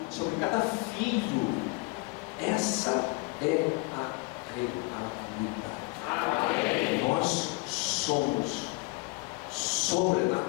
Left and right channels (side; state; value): right; quieter; 27.3 dB